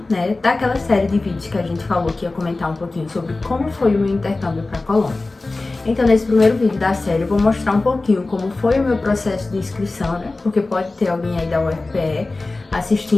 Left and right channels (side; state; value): right; quieter; 3.3 dB